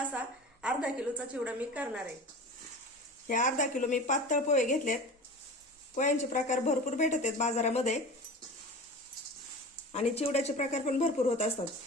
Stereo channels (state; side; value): normal; both; correlation 0.34